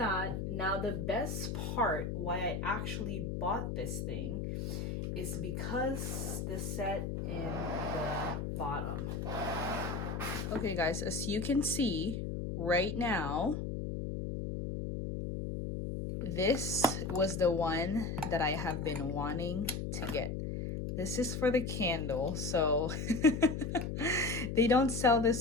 Now the best part why I actually bought this thing is because the set in the bottom. Okay guys, as you can see right now, this was the one that I have been wanting to get. This is for the candle, so they don't sell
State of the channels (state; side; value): noise; left; hum, 3 dB below the sound